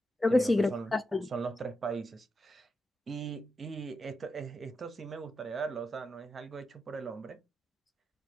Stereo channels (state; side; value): normal; both; correlation 0.87